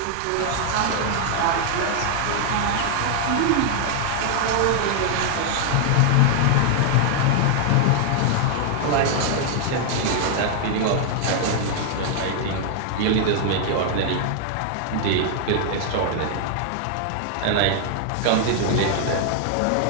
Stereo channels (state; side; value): different; both; correlation 0.00